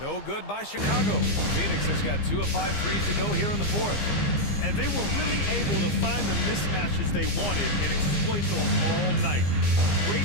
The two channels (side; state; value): right; late; 15 ms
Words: good by Chicago. Phoenix has got 2 of 5 threes to go here in the fourth. And they were really able to find the mismatches they wanted and exploit those all night.